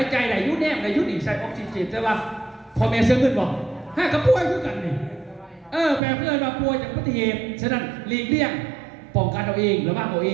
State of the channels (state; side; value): drops out; left; at 6.0 s